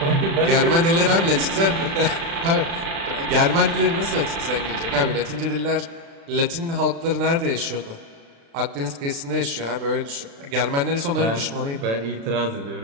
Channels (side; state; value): left; late; 36 ms